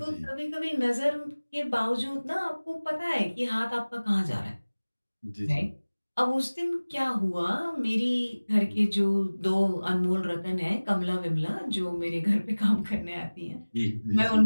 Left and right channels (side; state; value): both; inverted; correlation -1.00